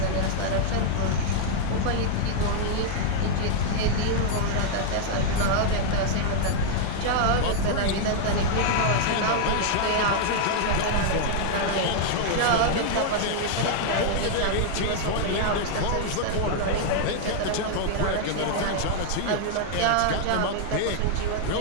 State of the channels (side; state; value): both; different; correlation -0.01